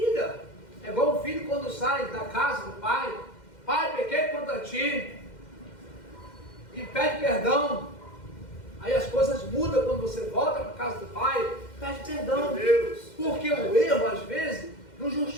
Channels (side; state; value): right; late; 2.1 ms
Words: É igual o filho quando sai da casa do pai: pai, pequei contra ti, e pede perdão. Aí as coisas mudam quando você volta para a casa do pai, pede perdão. Meu Deus. Porque o erro, às vezes, não